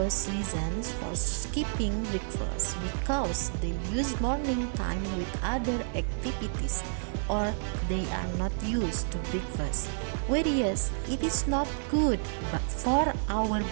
reasons for skipping breakfast because they use morning time with other activities or they are not used to breakfast. Whereas it is not good but for our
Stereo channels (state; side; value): silent; left; digital silence